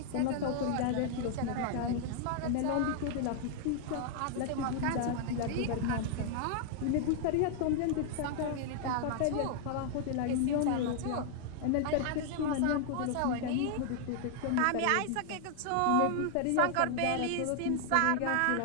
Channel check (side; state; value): both; different; correlation 0.00